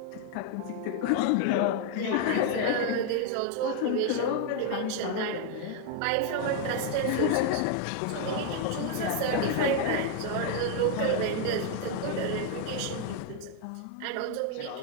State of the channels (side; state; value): both; different; correlation 0.00